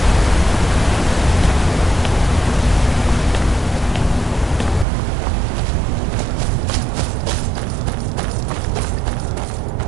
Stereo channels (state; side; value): drops out; left; at 4.9 s